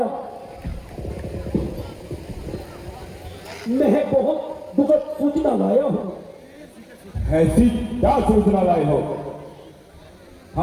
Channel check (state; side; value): identical; both; correlation 1.00